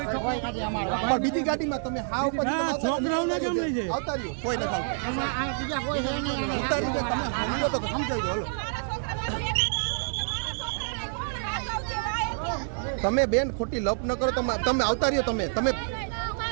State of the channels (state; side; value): silent; left; digital silence